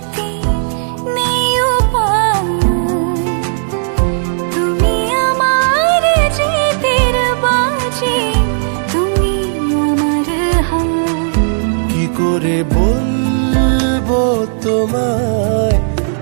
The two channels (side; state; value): left; silent; digital silence